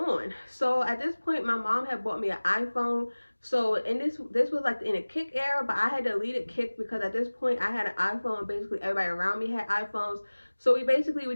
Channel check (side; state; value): both; inverted; correlation -1.00